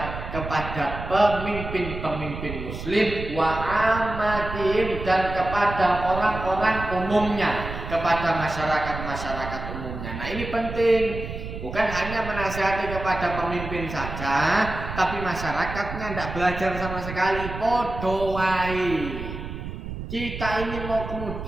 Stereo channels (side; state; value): right; noise; rumble, 8 dB below the sound